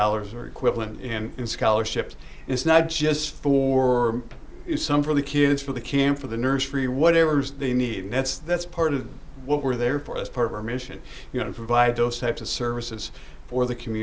or equivalent in scholarships. And it's not just for some for the kids, for the camp, for the nursery, whatever they need. And that's part of what we're there for. That's part of our mission, to provide those types of services for the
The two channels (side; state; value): both; identical; correlation 1.00